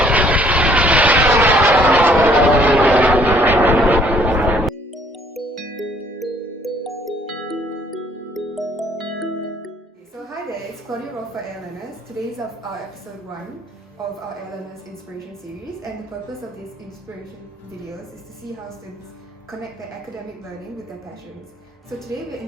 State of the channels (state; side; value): normal; both; correlation 0.62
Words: hi there, it's Claudia Roth for ALMS. Today is our episode 1 of our ALMS Inspiration Series, and the purpose of these inspiration videos is to see how students connect their academic learning with their passions. So today we're